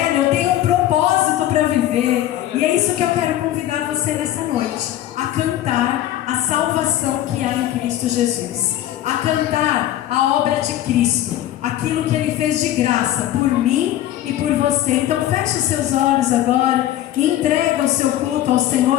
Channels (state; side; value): quieter; right; 13.0 dB